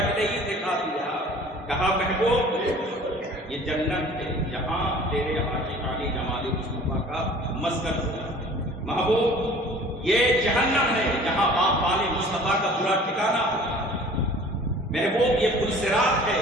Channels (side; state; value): both; normal; correlation 0.47